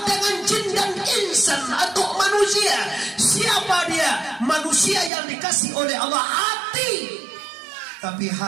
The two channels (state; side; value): drops out; left; at 5.1 s